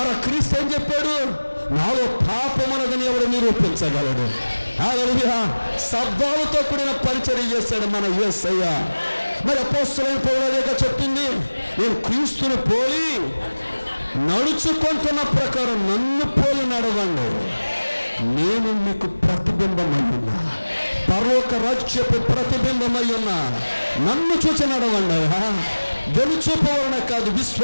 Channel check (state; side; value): inverted; both; correlation -1.00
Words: క్రీస్తు ఏం చెప్పాడు? నాలో పాపమున్నదని ఎవడు నిరూపించగలడు? హల్లెలూయా. శబ్దాలతో కూడిన పరిచర్య చేశాడు మన యేసయ్య. మరి అపోస్తలుడైన పౌలు చెప్పింది, నేను క్రీస్తుని పోలి నడుచుకుంటున్న ప్రకారం నన్ను పోలి నడవండి, నేను మీకు ప్రతిబింబమై ఉన్నా, పరలోక రాజ్యపు ప్రతిబింబమై ఉన్నా, నన్ను చూసి నడవండి. వెలుచూపు వలన కాదు,